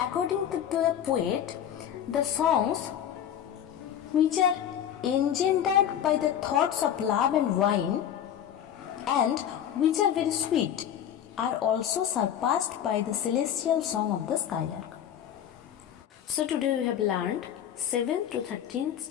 to the poet, the songs which are engendered by the thoughts of love and wine and which are very sweet are also surpassed by the celestial song of the skylark. So today we have learned 7th to 13th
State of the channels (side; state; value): right; quieter; 9.9 dB